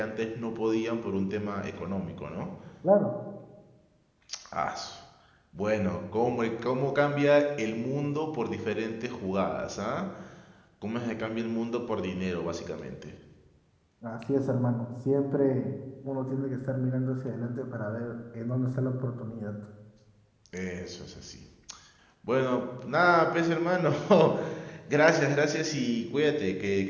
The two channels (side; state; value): both; identical; correlation 1.00